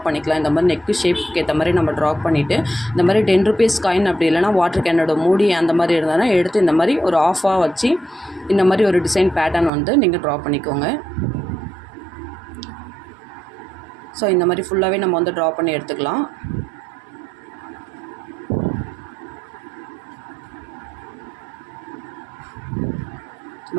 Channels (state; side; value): drops out; left; at 9.7 s